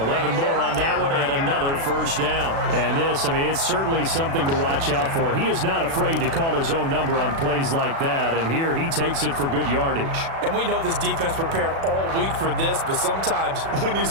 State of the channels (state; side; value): late; left; 36 ms